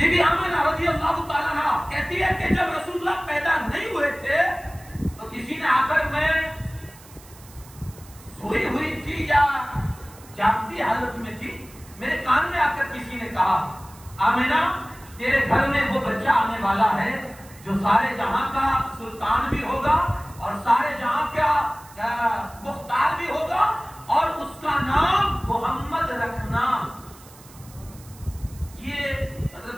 بی آمینہ رضی اللہ تعالیٰ عنہا کہتی ہے کہ جب رسول اللہ پیدا نہیں ہوئے تھے تو کسی نے آ کر، میں سوئی ہوئی تھی یا جاگتی حالت میں تھی، میرے کان میں آ کر کسی نے کہا آمینہ تیرے گھر میں وہ بچہ آنے والا ہے جو سارے جہاں کا سلطان بھی ہوگا اور سارے جہاں کا مختار بھی ہوگا، اور اس کا نام محمد رکھنا. یہ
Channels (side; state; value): right; noise; hiss, 22 dB below the sound